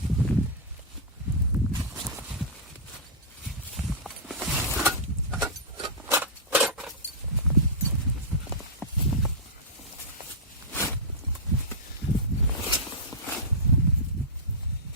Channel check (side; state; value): both; normal; correlation -0.13